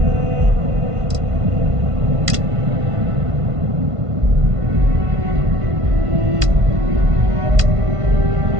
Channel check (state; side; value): late; left; 1.5 ms